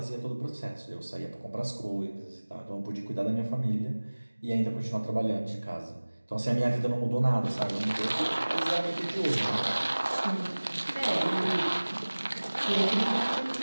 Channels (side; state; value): both; inverted; correlation -1.00